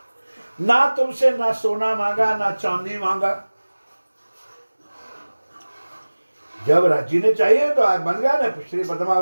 ना तुमसे ना सोना मांगा ना चांदी मांगा। जब राज्य ने चाहिए तो आज बन गया ना। श्री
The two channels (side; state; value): both; inverted; correlation -1.00